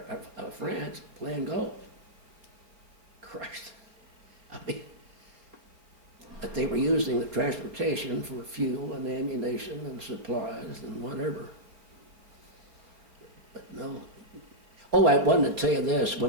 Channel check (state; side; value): late; left; 4.2 ms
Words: France playing golf. Christ. I mean, but they were using the transportation for fuel and ammunition and supplies and whatever. But no. Oh, I wanted to tell you this.